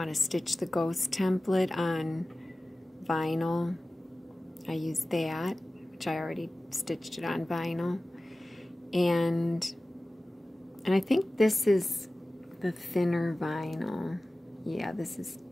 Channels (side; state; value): both; normal; correlation 0.97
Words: to stitch the ghost template on vinyl, I use that, which I already stitched it on vinyl. And I think this is the thinner vinyl. Yeah, this is